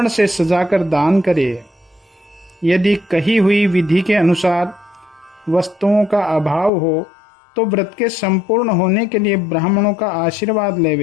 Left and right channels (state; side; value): drops out; right; at 6.7 s